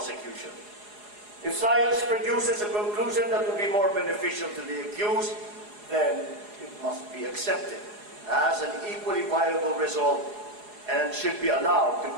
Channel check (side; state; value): left; late; 4.8 ms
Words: If science produces a conclusion that will be more beneficial to the accused, then it must be accepted as an equally viable result and should be allowed to